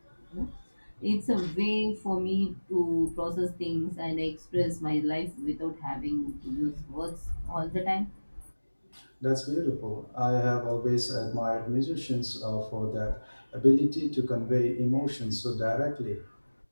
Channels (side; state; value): both; inverted; correlation -1.00